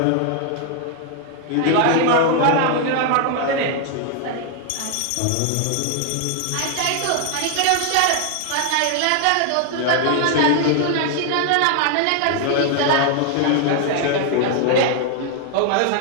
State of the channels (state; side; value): different; both; correlation 0.00